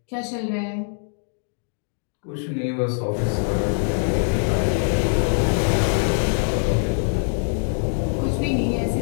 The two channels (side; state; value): right; silent; digital silence